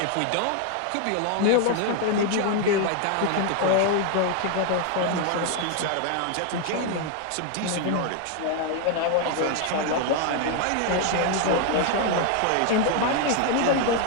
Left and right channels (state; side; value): different; both; correlation 0.00